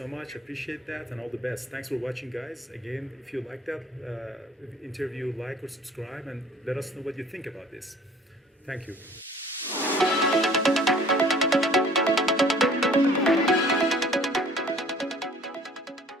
much. Appreciate that, and all the best. Thanks for watching, guys. Again, if you like that interview, like or subscribe, and let us know what you think about this. Thank you.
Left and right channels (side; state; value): both; normal; correlation 0.52